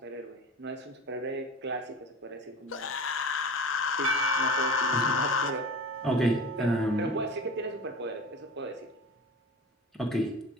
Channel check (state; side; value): normal; both; correlation 0.35